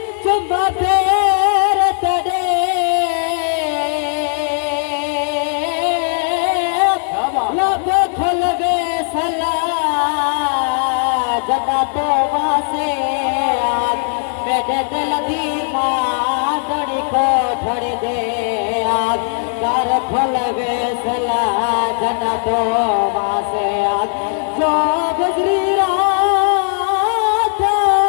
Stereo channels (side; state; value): right; silent; 68 dB below the other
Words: चुप फेर तेरे लब खुल वे सला जदा तो वासे मेरे दिल दी मादड़ी को ठड़ दे कर खुल वे सला जदा तो वासे जो गुजरी रात